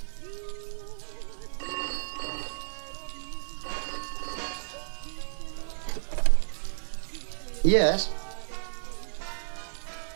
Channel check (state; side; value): silent; left; 57 dB below the other